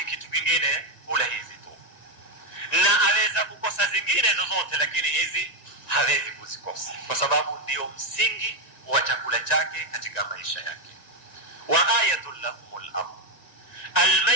kitu kingine hula hizi tu, na aweza kukosa zingine zozote, lakini hizi hawezi kuzikosa kwa sababu ndio msingi wa chakula chake katika maisha yake. Wa ayatul lahumul ardh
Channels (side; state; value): right; late; 1.9 ms